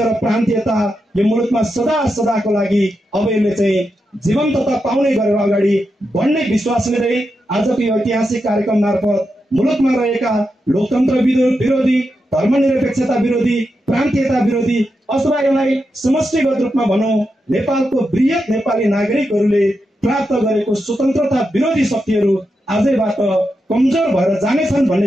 प्रान्तीयता यो मुलुकमा सदा सदाको लागि अब यसले चाहिँ जीवन्तता पाउने गरेर अगाडि बढ्ने विश्वास लिँदै आजको यो ऐतिहासिक कार्यक्रम मार्फत मुलुकमा रहेका लोकतन्त्र विरोधी, धर्मनिरपेक्षता विरोधी, प्रान्तीयता विरोधी अथवा यसलाई समष्टिगत रूपमा भनौं नेपालको वृहत नेपाली नागरिकहरूले प्राप्त गरेको स्वतन्त्रता विरोधी शक्तिहरू आजैबाट कमजोर भएर जानेछन्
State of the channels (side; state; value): both; normal; correlation 0.87